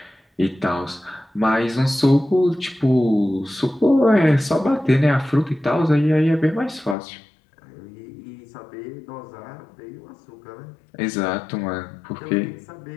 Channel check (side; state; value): right; drops out; at 7.0 s